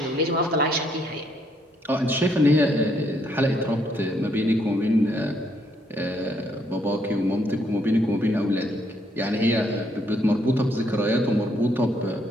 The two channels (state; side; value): normal; both; correlation 0.71